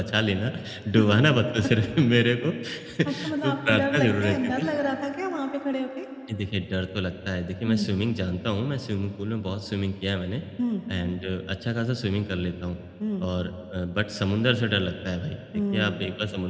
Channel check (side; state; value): both; identical; correlation 1.00